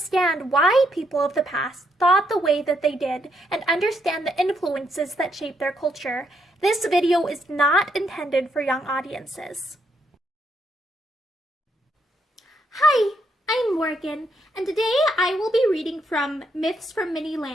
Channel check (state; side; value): normal; both; correlation 0.76